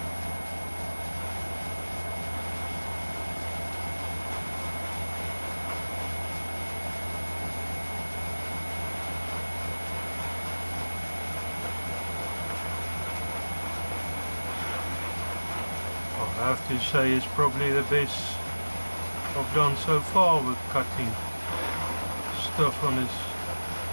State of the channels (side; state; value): both; inverted; correlation -1.00